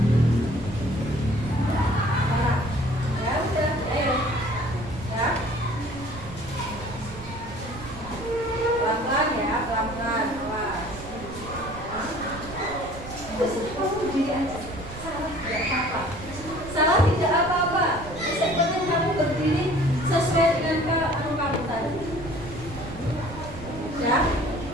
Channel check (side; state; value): right; noise; rumble, 13 dB below the sound